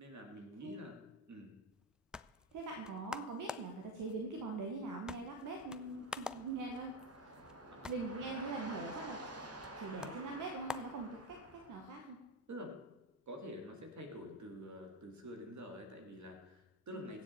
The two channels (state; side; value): normal; both; correlation 0.15